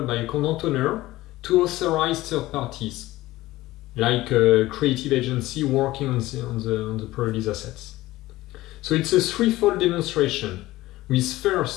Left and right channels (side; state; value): right; quieter; 17.5 dB